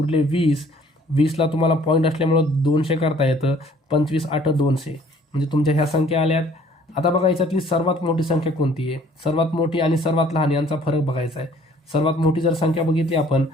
20. 20ला तुम्हाला पॉईंट असल्यामुळं 200 करता येतं. 25 8 200, म्हणजे तुमच्या ह्या संख्या आल्यात. आता बघा, याच्यातली सर्वात मोठी संख्या कोणती आहे, सर्वात मोठी आणि सर्वात लहान यांचा फरक बघायचा आहे. सर्वात मोठी जर संख्या बघितली आपण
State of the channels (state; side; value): normal; both; correlation 0.57